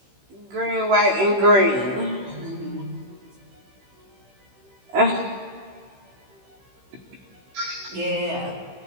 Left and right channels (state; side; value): late; left; 15 ms